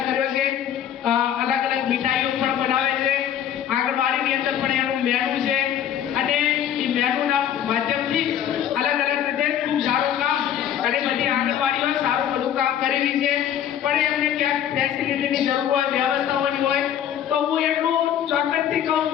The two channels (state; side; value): quieter; right; 10.0 dB